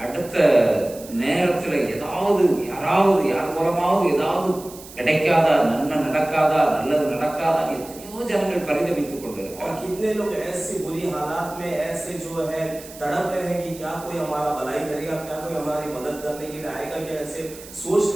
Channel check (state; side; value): noise; right; hiss, 17 dB below the sound